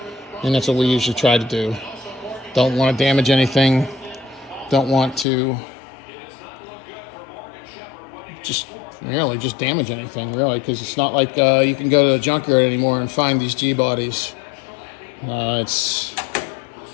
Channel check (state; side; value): drops out; right; at 5.2 s